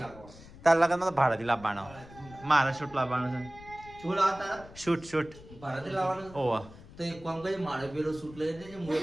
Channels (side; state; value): left; noise; rumble, 19 dB below the sound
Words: લાવવાનો તાર લગનમાં તો ભાડાથી લાવવાનો મારા શૂટ લાવવાનો છે શું લાવતા શૂટ શૂટ ભાડાથી લાવવાનો ઓવા તો એક કામ કરી મારે પેલો સૂટ લઈ દેજે હું